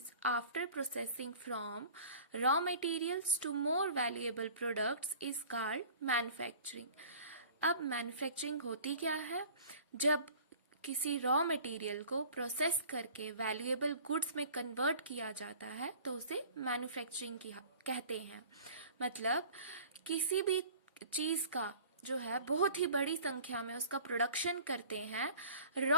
after processing from raw materials to more valuable products is called manufacturing. अब manufacturing होती क्या है? जब किसी रॉ मटेरियल को प्रोसेस करके वैल्यूएबल गुड्स में कन्वर्ट किया जाता है तो उसे मैन्युफैक्चरिंग कहते हैं. मतलब किसी भी चीज का जो है बहुत ही बड़ी संख्या में उसका प्रोडक्शन करते हैं,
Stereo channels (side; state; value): both; inverted; correlation -0.45